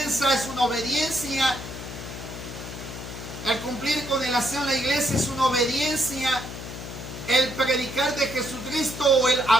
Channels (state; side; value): noise; left; hum, 10 dB below the sound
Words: es una obediencia. El cumplir con el aseo en la iglesia es una obediencia. El predicar de Jesucristo o el